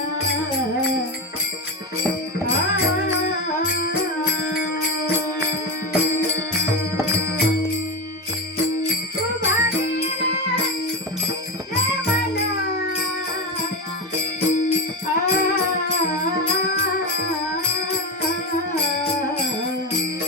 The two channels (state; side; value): normal; both; correlation 0.16